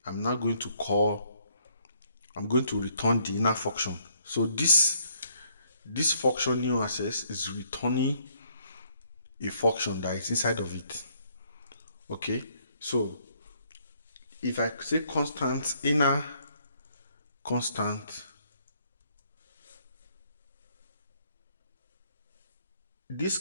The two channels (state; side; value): inverted; both; correlation -0.68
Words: I'm now going to return the inner function. So this function new access is returning a function that is inside of it. Okay, so if I say constant inner constant, this